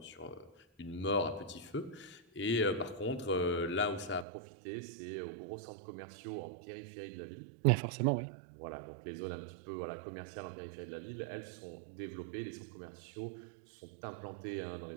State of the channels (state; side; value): drops out; left; at 4.2 s